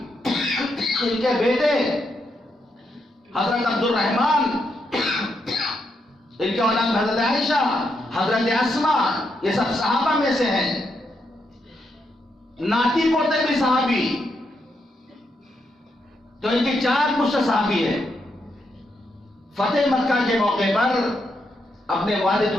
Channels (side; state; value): both; normal; correlation 0.81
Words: ان کے بیٹے حضرت عبد الرحمن، ان کے اولاد حضرت عائشہ، حضرت اسماء، یہ سب صحابہ میں سے ہیں، ناتی پوتے بھی صحابی، تو ان کی 4 پشت صحابی ہے۔ فتح مکہ کے موقع پر اپنے والد